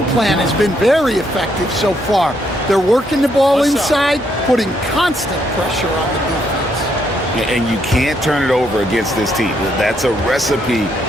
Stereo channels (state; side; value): normal; both; correlation 0.74